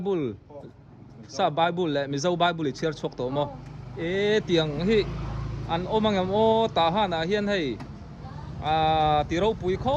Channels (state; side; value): identical; both; correlation 1.00